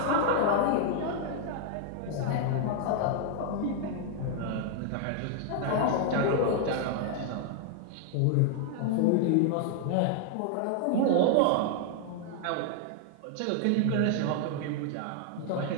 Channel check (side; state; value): both; different; correlation 0.00